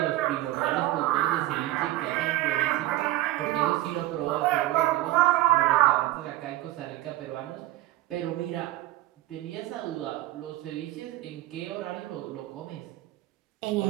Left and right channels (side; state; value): left; quieter; 16.1 dB